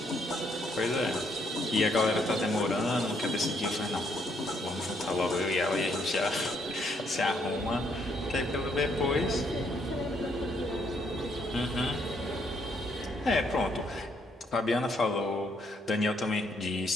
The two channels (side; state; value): both; normal; correlation 0.71